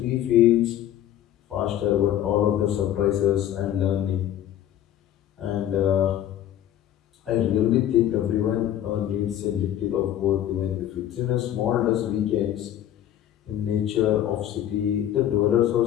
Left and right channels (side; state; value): right; quieter; 11.6 dB